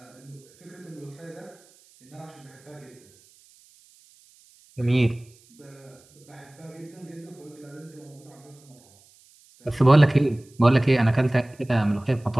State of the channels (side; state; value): right; noise; hiss, 29 dB below the sound